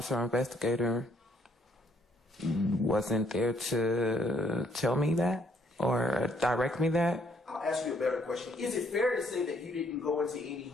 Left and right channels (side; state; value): both; normal; correlation 0.67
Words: investigator wasn't there to tell me that or direct me that. I'll ask you a better question. Is it fair to say that you didn't go into any